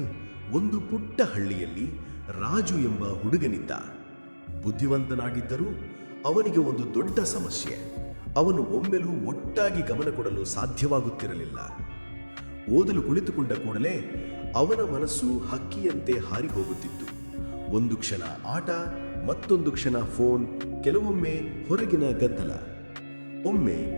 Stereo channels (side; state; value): both; inverted; correlation -1.00